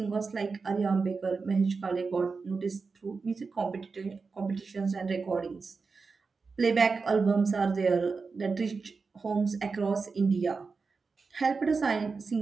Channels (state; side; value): quieter; left; 4.6 dB